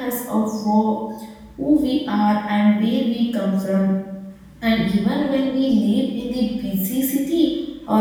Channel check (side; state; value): both; identical; correlation 1.00